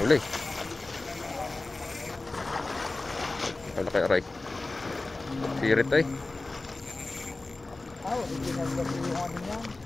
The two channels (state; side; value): quieter; right; 3.2 dB